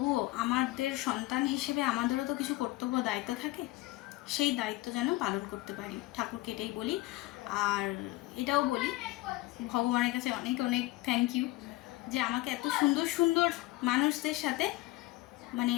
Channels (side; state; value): right; quieter; 19.4 dB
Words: আমাদের সন্তান হিসেবে আমাদেরও তো কিছু কর্তব্য দায়িত্ব থাকে, সেই দায়িত্ব যেন পালন করতে পারি, ঠাকুরকে এটাই বলি। আর এটাও বলি ভগবানের কাছে অনেক অনেক থ্যাংক ইউ, যে আমাকে এত সুন্দর সুন্দর মানুষদের সাথে, মানে